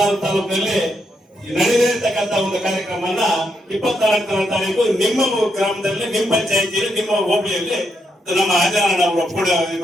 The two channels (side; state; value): both; normal; correlation 0.79